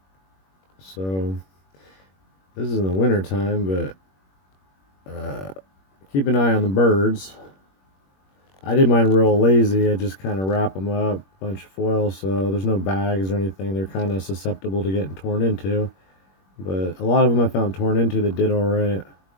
So this is in the winter time, but keep an eye on the birds. I did mine real lazy. I just kind of wrap them up, bunch of foil, so there's no bags or anything. They're kind of susceptible to getting torn into, but a lot of them I found torn into that did all right.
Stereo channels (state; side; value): late; right; 21 ms